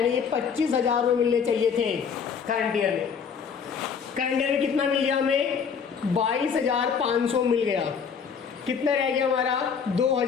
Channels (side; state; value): right; quieter; 6.5 dB